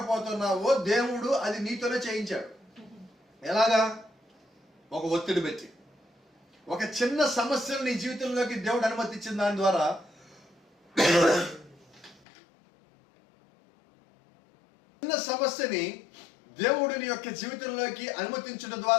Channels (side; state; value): right; drops out; at 12.2 s